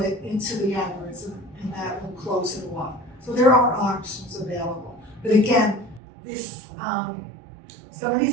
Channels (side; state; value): left; drops out; at 6.0 s